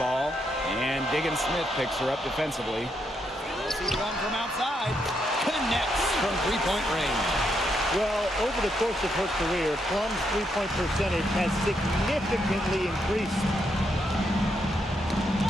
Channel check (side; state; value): both; normal; correlation 0.79